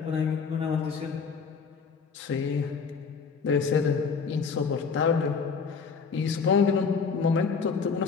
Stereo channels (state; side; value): quieter; right; 5.5 dB